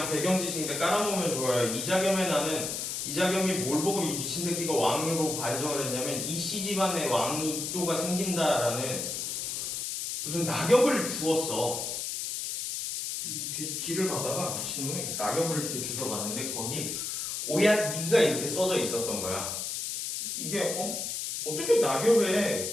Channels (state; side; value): noise; left; hiss, 3 dB below the sound